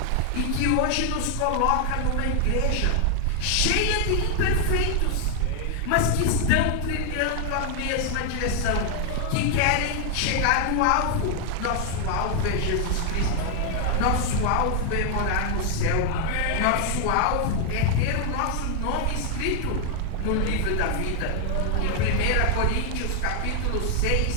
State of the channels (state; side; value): different; both; correlation 0.00